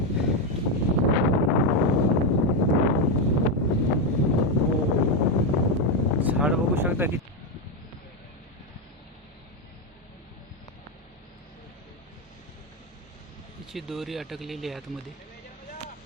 झाड बघू शकता की तिची दोरी अटकलेली आहे आतमध्ये.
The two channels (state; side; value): normal; both; correlation 0.07